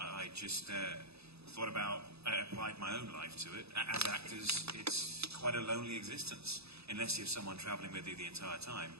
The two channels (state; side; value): late; left; 0.79 ms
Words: just thought about, I applied my own life to it. As actors, it's quite a lonely existence, unless you have someone traveling with you the entire time.